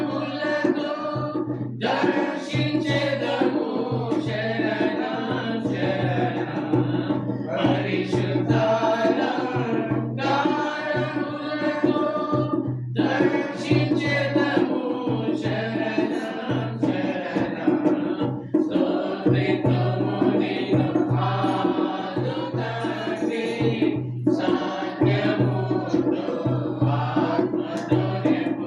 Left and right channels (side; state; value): both; identical; correlation 1.00